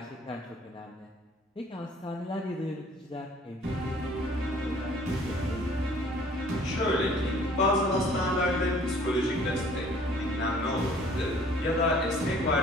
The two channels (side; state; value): both; normal; correlation 0.55